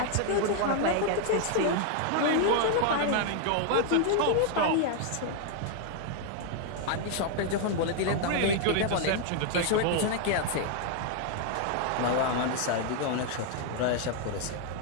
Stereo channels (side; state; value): both; different; correlation 0.00